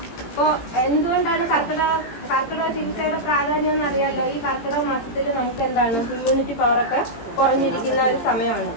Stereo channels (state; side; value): late; right; 18 ms